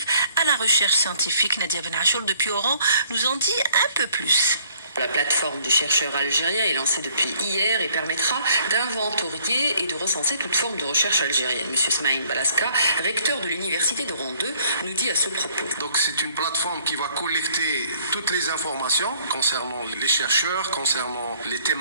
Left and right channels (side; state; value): both; inverted; correlation -0.62